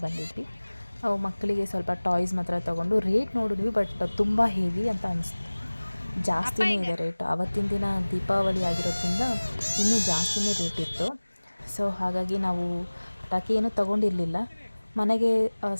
ಬಂದಿದ್ವಿ. ಮಕ್ಕಳಿಗೆ ಸ್ವಲ್ಪ ಟಾಯ್ಸ್ ಮಾತ್ರ ತೊಗೊಂಡು ರೇಟ್ ನೋಡಿದ್ವಿ, ಬಟ್ ತುಂಬ ಹೆವಿ ಅಂತ ಅನಿಸ್ತು. ಜಾಸ್ತಿನೇ ಇದೆ ರೇಟ್. ಆವತ್ತಿನ ದಿನ ದೀಪಾವಳಿ ಆಗಿರೋದ್ರಿಂದ ಇನ್ನೂ ಜಾಸ್ತಿನೇ ರೇಟ್ ಇತ್ತು. ಸೊ ಹಾಗಾಗಿ ನಾವು ಪಟಾಕಿ ಏನೂ ತೊಗೊಂಡಿರಲಿಲ್ಲ, ಮನೆಗೆ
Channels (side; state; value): both; inverted; correlation -1.00